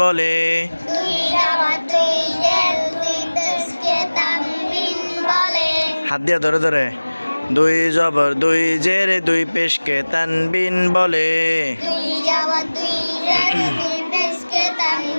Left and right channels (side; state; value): both; inverted; correlation -1.00